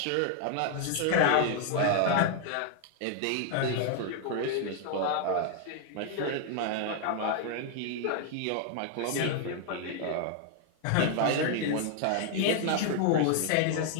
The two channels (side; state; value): both; different; correlation 0.00